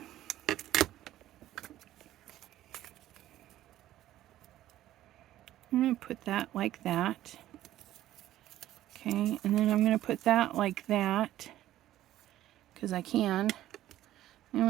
going to put that like that. Okay, and then I'm going to put that like that. Because I can. I'm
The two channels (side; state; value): left; quieter; 13.6 dB